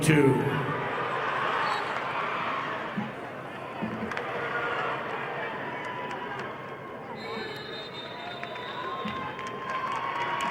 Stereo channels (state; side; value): identical; both; correlation 1.00